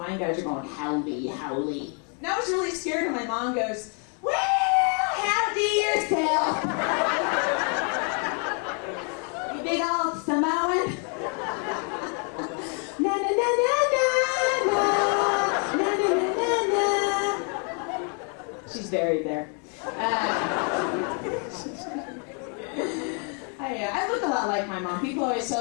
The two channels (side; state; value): right; quieter; 39.7 dB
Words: guys are going, howdy, howdy. And I was really scared, and my mom goes, well, howdy yourself. You big old Samoan. Na na na na na na na na na na. She's buried there. I look a lot like my mom. People always